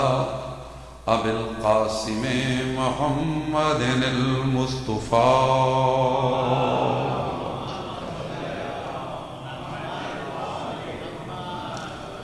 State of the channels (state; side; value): identical; both; correlation 1.00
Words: ابی القاسم محمد المصطفی